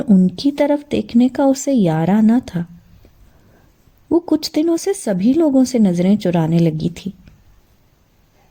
ان کی طرف دیکھنے کا اسے یارہ نہ تھا۔ وہ کچھ دنوں سے سبھی لوگوں سے نظریں چرانے لگی تھی۔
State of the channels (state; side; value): identical; both; correlation 1.00